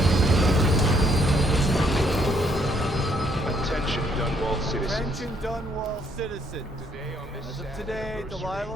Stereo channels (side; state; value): both; normal; correlation 0.68